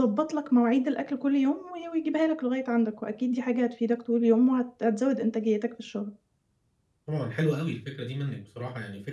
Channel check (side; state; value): both; identical; correlation 1.00